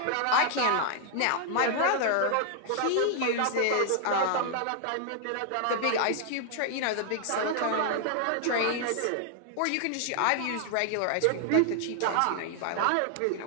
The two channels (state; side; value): different; both; correlation 0.00